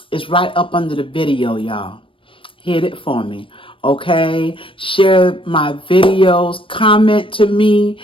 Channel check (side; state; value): right; late; 0.25 ms